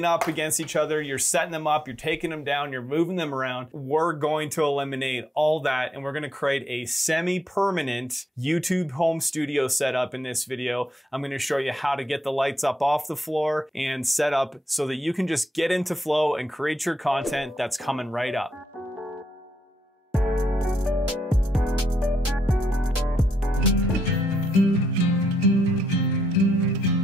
up against each other. You're setting them up, you're taking them down, you're moving them around. We're going to eliminate all that and we're going to create a semi-permanent YouTube home studio setup in this video. I'm going to show you how to get the lights up off the floor and set up so that you can just get into flow and create your content that's coming right up.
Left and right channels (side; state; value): both; normal; correlation 0.79